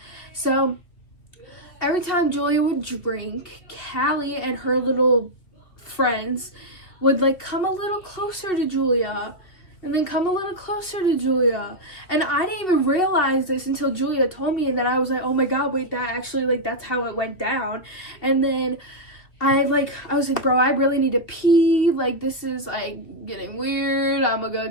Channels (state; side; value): late; right; 2.5 ms